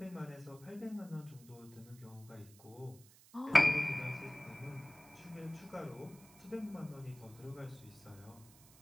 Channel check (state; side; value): noise; right; hiss, 23 dB below the sound